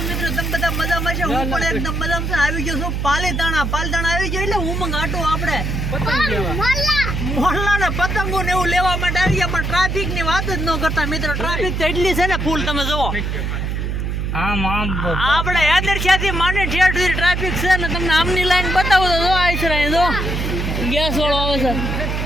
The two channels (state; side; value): noise; right; hum, 2 dB below the sound